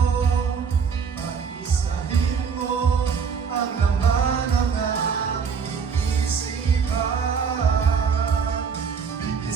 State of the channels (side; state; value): left; quieter; 6.1 dB